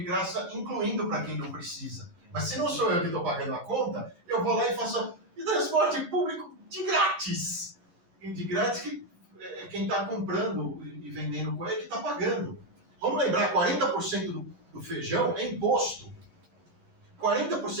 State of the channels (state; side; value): late; left; 11 ms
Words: graça, incluindo para quem não precisa. Mas se não sou eu que estou pagando a conta, eu vou lá e faço transporte público de grátis. E de grátis que quem está comprando e vendendo coisa é que está pagando. Vamos lembrar, 40% do feijão é imposto.